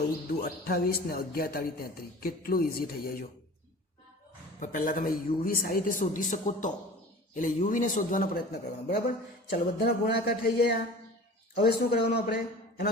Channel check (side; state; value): both; normal; correlation 0.41